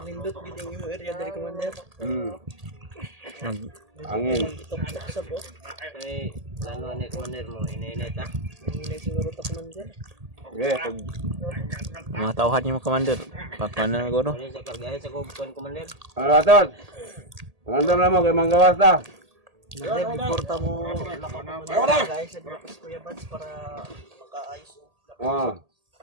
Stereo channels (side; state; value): left; late; 1.8 ms